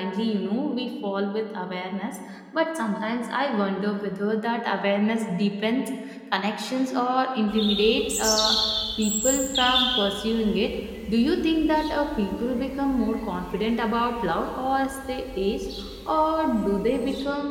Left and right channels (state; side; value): identical; both; correlation 1.00